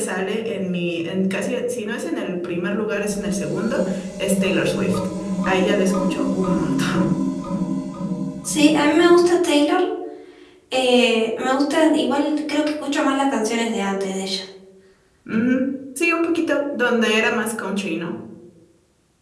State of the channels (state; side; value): identical; both; correlation 1.00